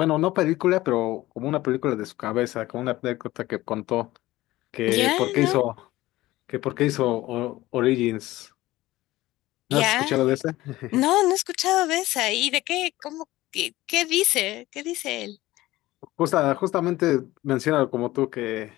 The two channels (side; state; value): right; quieter; 17.3 dB